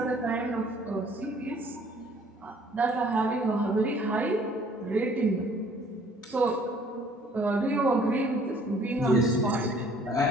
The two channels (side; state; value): both; normal; correlation 0.57